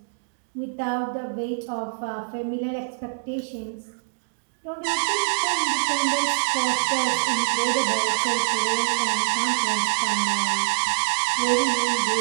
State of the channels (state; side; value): silent; left; 62 dB below the other